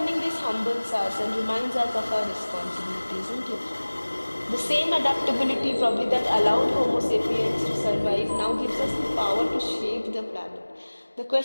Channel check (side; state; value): both; inverted; correlation -1.00